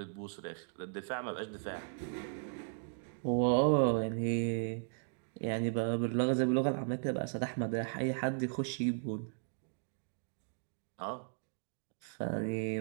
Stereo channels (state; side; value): silent; left; digital silence